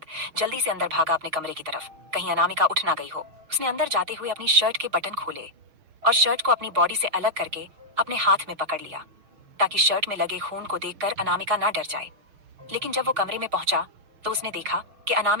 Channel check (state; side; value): late; left; 6.4 ms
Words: जल्दी से अंदर भागा अपने कमरे की तरफ, कहीं अनामिका उठ ना गई हो। उसने अंदर जाते हुए अपनी शर्ट के बटन खोले और शर्ट को अपनी बॉडी से अलग करके अपने हाथ में पकड़ लिया, ताकि शर्ट में लगे खून को देखकर अनामिका ना डर जाए। लेकिन जब वो कमरे में पहुंचा तो उसने देखा कि